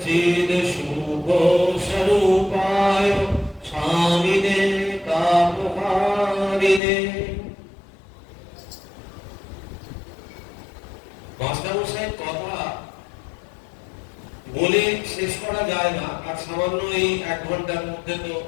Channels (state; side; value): drops out; right; at 6.8 s